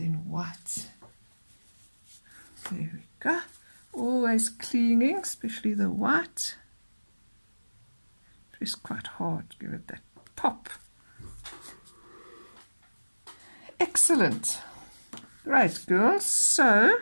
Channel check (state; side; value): inverted; both; correlation -1.00